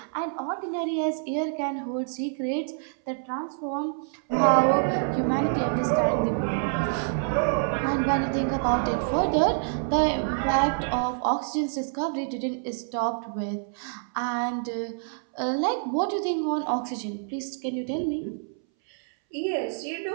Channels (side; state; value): left; silent; 60 dB below the other